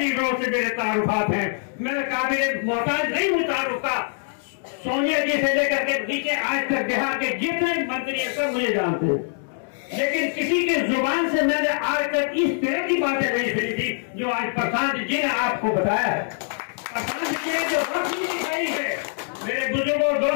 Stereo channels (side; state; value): right; silent; digital silence